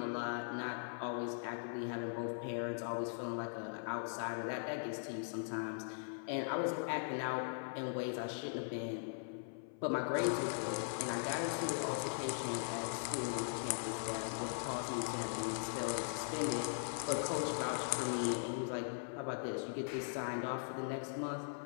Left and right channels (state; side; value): silent; right; 51 dB below the other